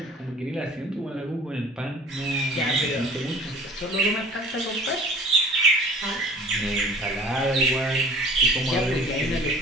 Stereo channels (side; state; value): both; normal; correlation 0.46